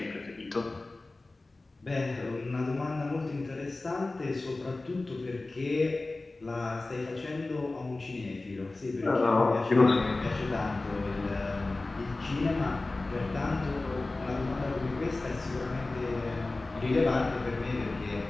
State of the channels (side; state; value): right; quieter; 3.2 dB